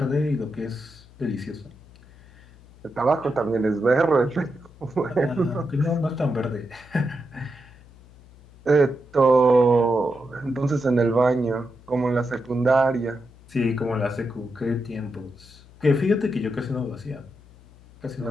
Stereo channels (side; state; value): left; noise; hum, 24 dB below the sound